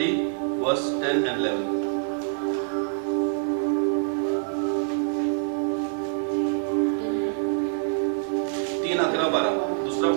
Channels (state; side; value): silent; left; digital silence